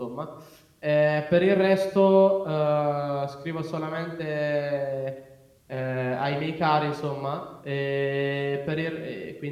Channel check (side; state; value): both; identical; correlation 1.00